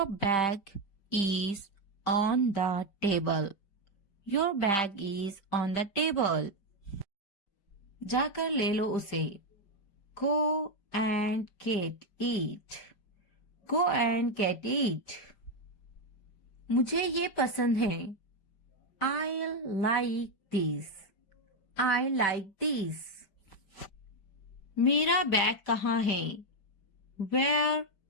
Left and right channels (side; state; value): right; late; 5.1 ms